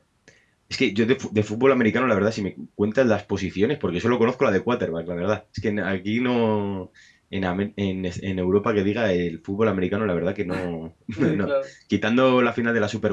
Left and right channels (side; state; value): both; identical; correlation 1.00